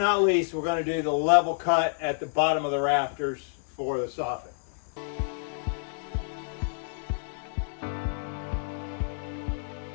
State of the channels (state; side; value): silent; right; digital silence